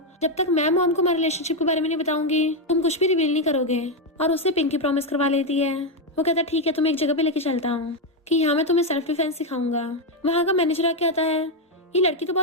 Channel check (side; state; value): both; normal; correlation 0.05